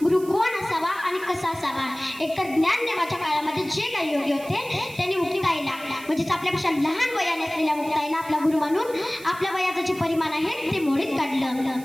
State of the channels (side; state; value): right; noise; hiss, 19 dB below the sound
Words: गुरु कोण असावा आणि कसा असावा? एकतर ज्ञानदेवाच्या काळामध्ये जे काही योग्य होते त्यांनी मुक्ताईला, म्हणजेच आपल्यापेक्षा लहान वयाने असलेल्या मुक्ताईला आपला गुरु मानून आपल्या वयाचं जे परिमाण आहे ते मोडीत